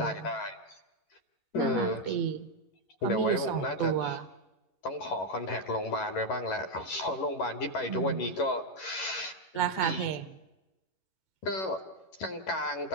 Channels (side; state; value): right; late; 11 ms